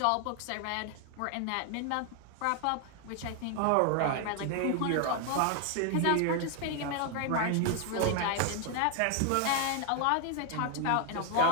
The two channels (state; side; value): different; both; correlation 0.00